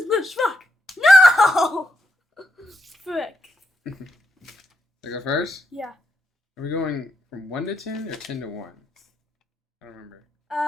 Lizard Spock. No! Frick. I go first? Yeah. Are we going from 1 to 10 or 10 to 1? I don't remember.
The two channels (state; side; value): normal; both; correlation 0.81